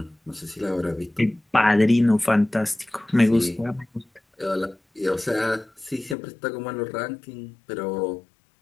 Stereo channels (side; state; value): right; drops out; at 6.2 s